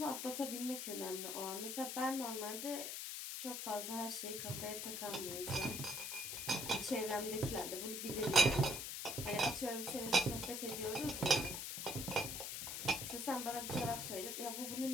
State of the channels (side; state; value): left; noise; hiss, 4 dB below the sound